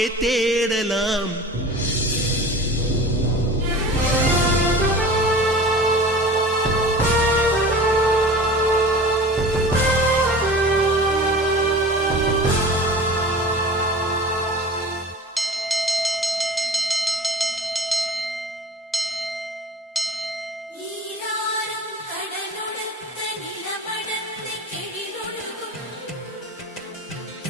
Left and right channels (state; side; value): normal; both; correlation 0.39